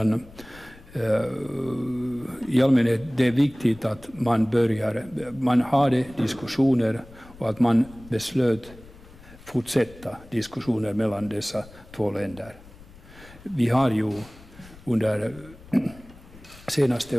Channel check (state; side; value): noise; left; rumble, 21 dB below the sound